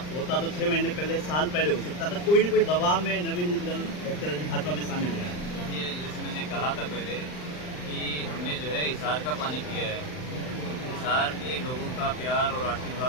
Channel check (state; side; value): late; right; 39 ms